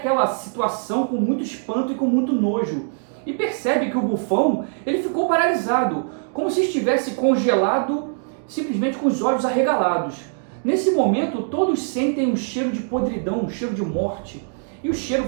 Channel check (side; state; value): left; silent; 64 dB below the other